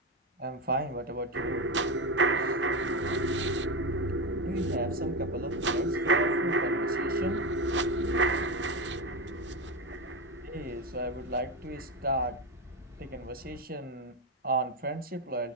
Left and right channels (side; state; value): both; normal; correlation 0.14